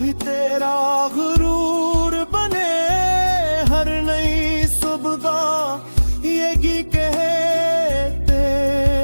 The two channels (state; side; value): inverted; both; correlation -1.00